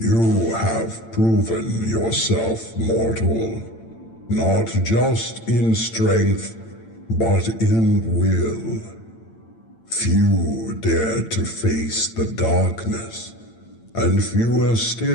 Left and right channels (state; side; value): late; right; 8.9 ms